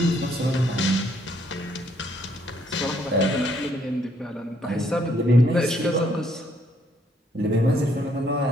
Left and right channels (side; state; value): both; normal; correlation 0.69